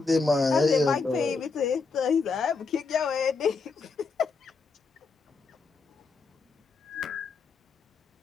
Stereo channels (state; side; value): quieter; right; 4.5 dB